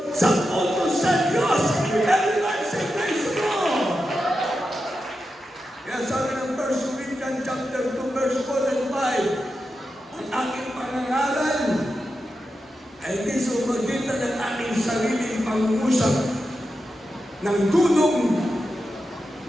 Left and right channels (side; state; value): both; normal; correlation 0.89